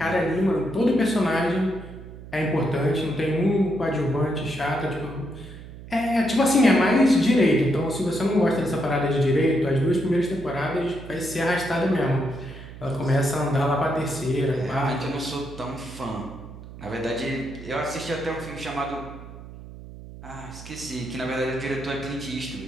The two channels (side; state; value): right; noise; hum, 15 dB below the sound